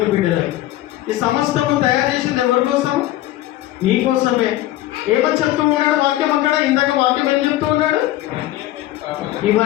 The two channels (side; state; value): right; quieter; 15.2 dB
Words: బిడ్డలకు. ఈ సమస్తము తయారు చేసింది ఎవరి కోసం? నీ కోసమే. ఏమని చెప్తూ ఉన్నాడు వాక్యం అక్కడ? ఇందాక వాక్యం ఏం చెప్తూ ఉన్నాడు?